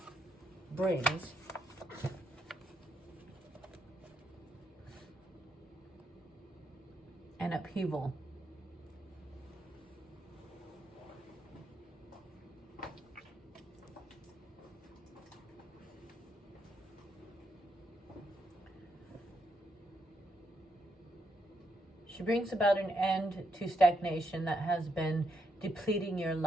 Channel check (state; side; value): normal; both; correlation 0.79